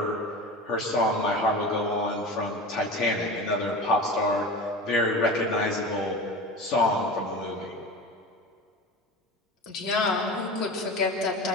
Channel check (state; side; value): normal; both; correlation 0.31